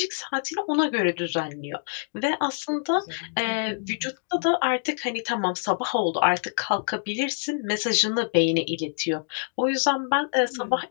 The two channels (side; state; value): right; silent; digital silence